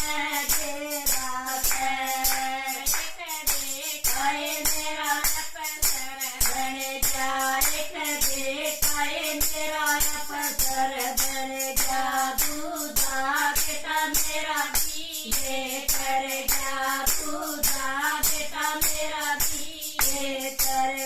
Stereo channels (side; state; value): both; identical; correlation 1.00